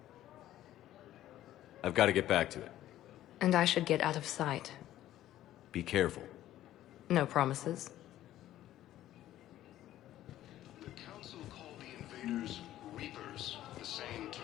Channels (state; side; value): quieter; right; 13.4 dB